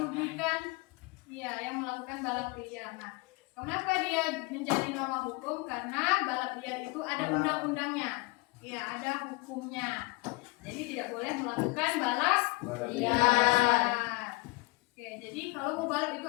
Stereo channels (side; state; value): right; quieter; 25.2 dB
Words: yang melakukan balap liar. Nah, kenapa dia menjadi norma hukum? Karena balap liar itu ada undang-undangnya. Ya, ada hukumnya. Jadi tidak boleh melakukan balap liar. Oke, jadi kalau mau balap itu